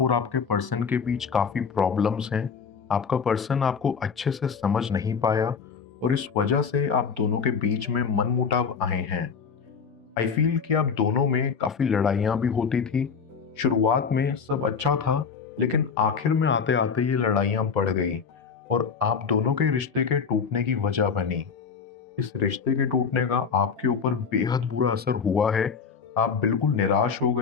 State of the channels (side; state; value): right; quieter; 6.0 dB